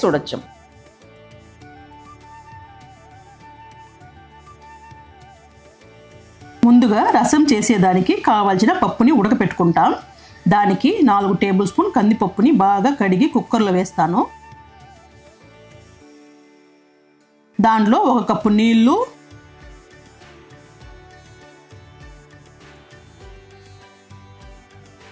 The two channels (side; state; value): both; identical; correlation 1.00